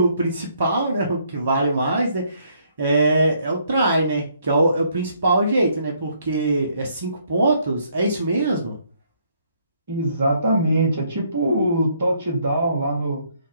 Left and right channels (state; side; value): inverted; both; correlation -0.68